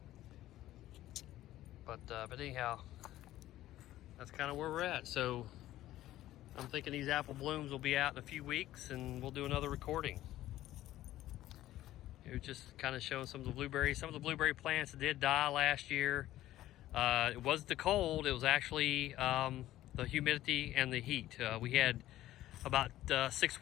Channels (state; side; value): quieter; right; 14.5 dB